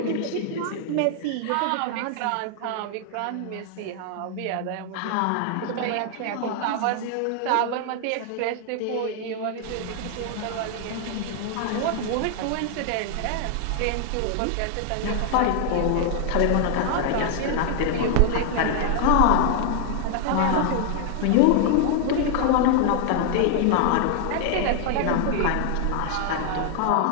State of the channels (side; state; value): both; different; correlation 0.00